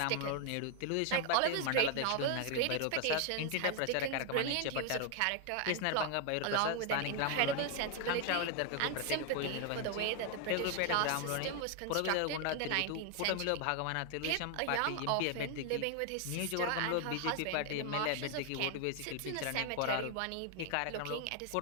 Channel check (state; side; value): different; both; correlation 0.00